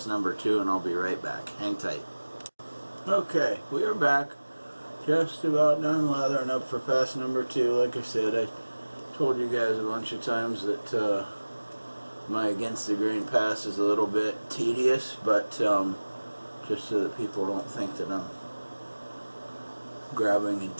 number 2, and I'll be right back. Hang tight. Okay, we are back. Just about done lathering up for pass number 2. Like I said, I told you guys a bunch of times that my against the grain pass is a little bit tedious, but just so that people don't think that I'm grabbing a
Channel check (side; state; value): both; inverted; correlation -1.00